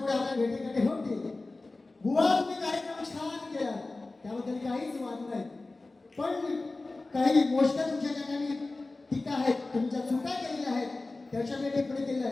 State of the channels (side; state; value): right; quieter; 3.2 dB